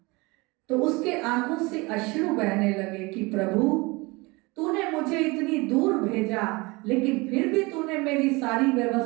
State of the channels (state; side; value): quieter; left; 24.9 dB